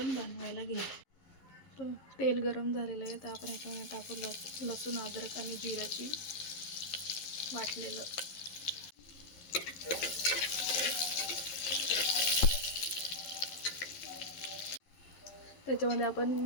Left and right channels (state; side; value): late; right; 11 ms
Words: बनवायला घेऊ। तर तेल गरम झालेलं आहे, तर आपण याच्यामध्ये टाकू लसूण, अद्रक आणि जिऱ्याची वाटलेलं। त्याच्यामध्ये